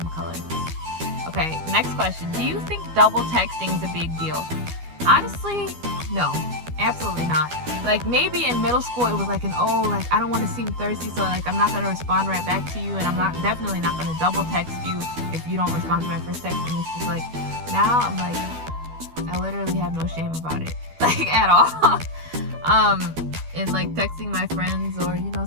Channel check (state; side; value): late; left; 12 ms